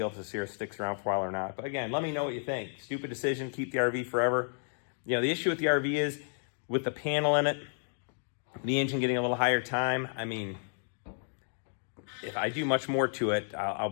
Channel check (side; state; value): right; silent; digital silence